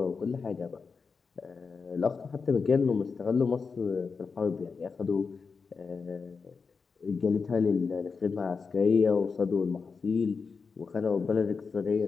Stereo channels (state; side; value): quieter; right; 5.1 dB